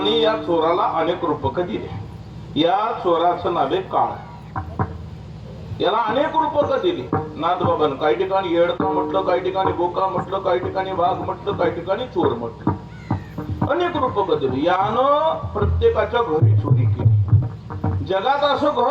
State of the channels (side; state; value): both; identical; correlation 1.00